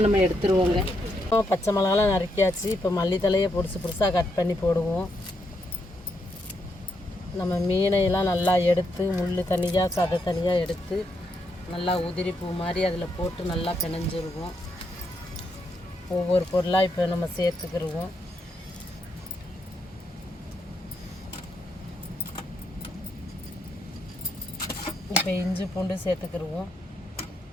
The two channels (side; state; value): both; normal; correlation 0.79